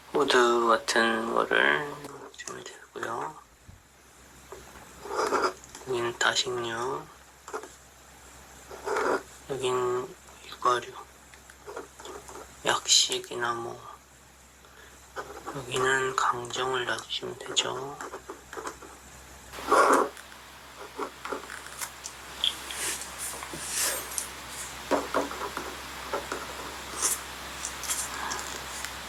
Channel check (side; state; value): both; identical; correlation 1.00